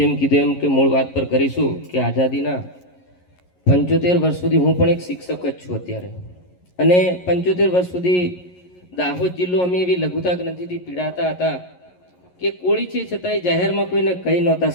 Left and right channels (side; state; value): right; late; 11 ms